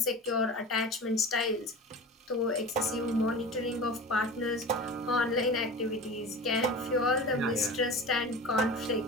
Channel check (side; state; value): both; normal; correlation 0.33